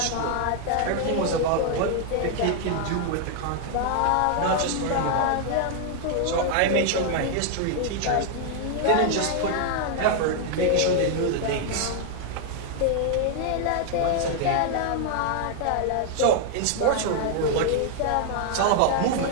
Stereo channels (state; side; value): different; both; correlation 0.00